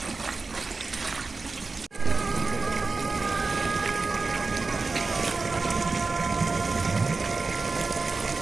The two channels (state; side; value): quieter; left; 3.9 dB